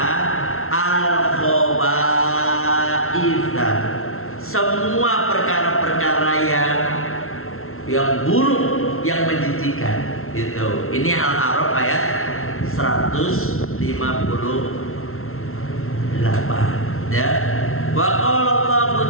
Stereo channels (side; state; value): right; late; 0.62 ms